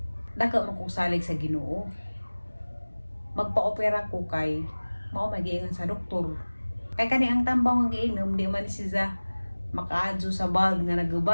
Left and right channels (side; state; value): both; inverted; correlation -1.00